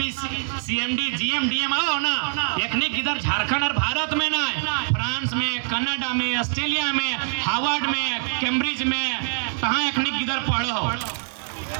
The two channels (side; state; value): left; silent; 61 dB below the other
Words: सीएमडी जीएम डीएम आओ ना अखनी इधर झारखंड और भारत में ना फ्रांस में, कनाडा में, ऑस्ट्रेलिया में, हार्वर्ड में, कैम्ब्रिज में कहाँ अखनी इधर पढ़े हो।